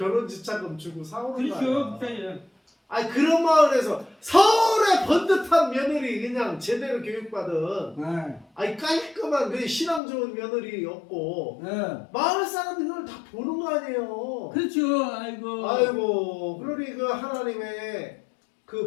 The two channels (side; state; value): right; drops out; at 10.0 s